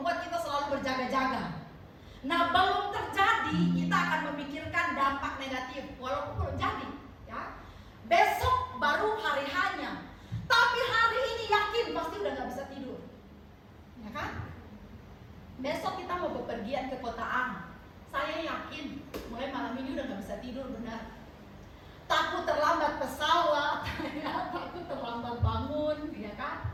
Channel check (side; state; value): both; identical; correlation 1.00